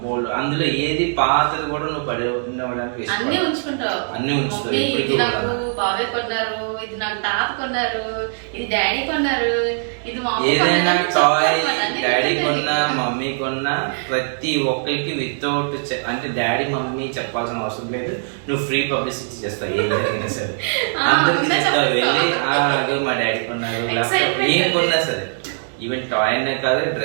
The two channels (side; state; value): left; silent; 65 dB below the other